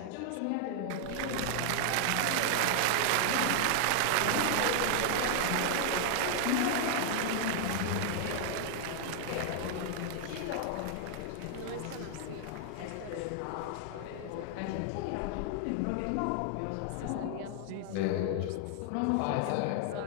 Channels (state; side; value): different; both; correlation 0.00